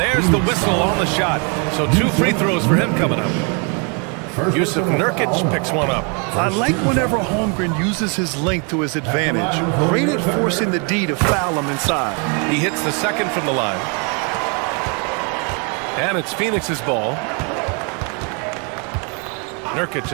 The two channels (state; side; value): quieter; left; 36.0 dB